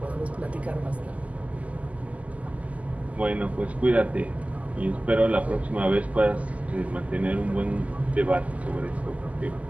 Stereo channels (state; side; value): late; left; 0.071 ms